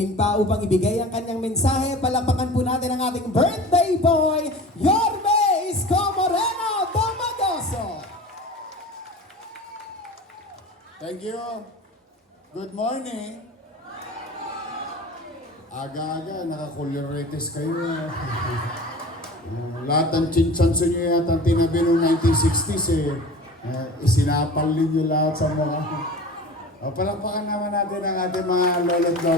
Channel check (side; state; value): both; normal; correlation 0.38